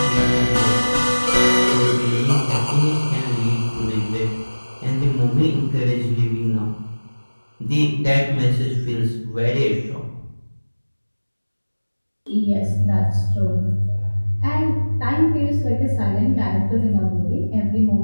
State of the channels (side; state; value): both; inverted; correlation -1.00